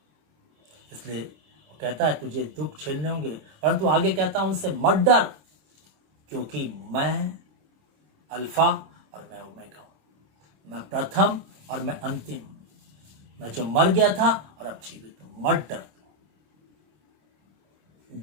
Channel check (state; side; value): late; left; 26 ms